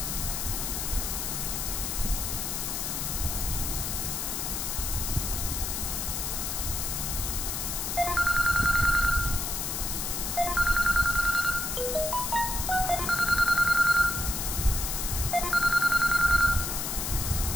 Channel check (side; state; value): left; noise; hiss, 2 dB below the sound